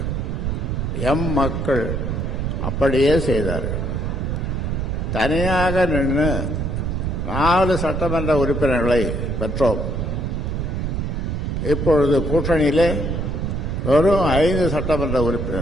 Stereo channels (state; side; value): noise; right; rumble, 1 dB below the sound